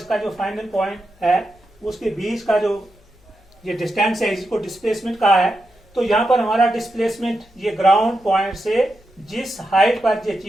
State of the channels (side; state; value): left; noise; hum, 30 dB below the sound